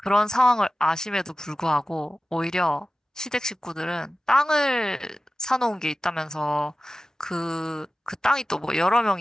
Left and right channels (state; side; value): normal; both; correlation 0.95